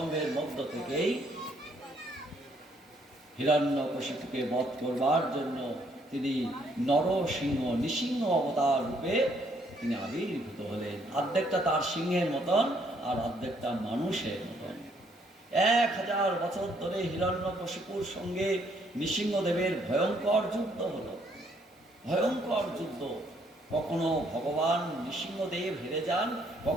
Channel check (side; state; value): both; normal; correlation 0.68